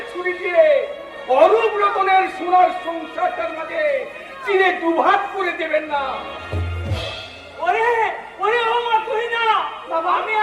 ছুরি দিয়ে অরূপ রতনের সোনার সংসারটার মাঝে চিনে দুভাগ করে দেবেন না। ওরে ওরে ও মা তুই না বাবা, আমি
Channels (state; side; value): identical; both; correlation 1.00